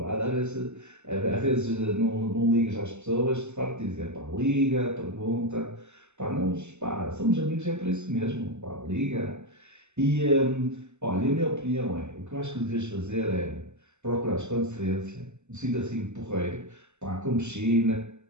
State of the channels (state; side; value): late; left; 0.83 ms